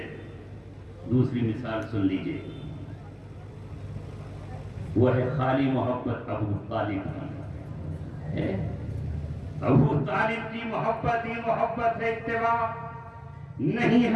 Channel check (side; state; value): both; identical; correlation 1.00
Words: دوسری مثال سن لیجئے، وہ ہے خالی محبت ابو طالب کی ہے۔ ابو طالب کی محبت ہی محبت ہے، اتباع نہیں